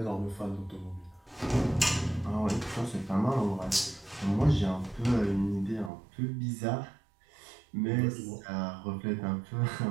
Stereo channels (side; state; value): left; drops out; at 5.9 s